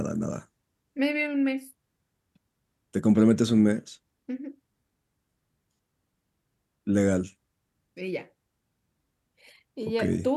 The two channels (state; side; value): identical; both; correlation 1.00